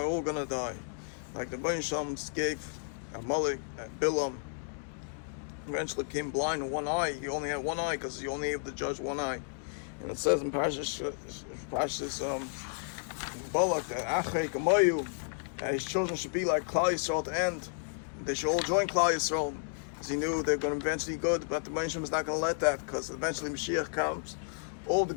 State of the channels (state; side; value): silent; right; digital silence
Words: all gonna die. Like the Bain Shem gave Amalek and Bilam, eventually became blind in one eye. He only had one eye because he only able to judge one eye. And it says in Parshas Balak that Achrei Kamoyu, that his children should be like Klal Yisrael at the end. They should all join Klal Yisrael, because he knew they're going to eventually be good. But the Bain Shem is not going to let that, because eventually Mashiach comes. All the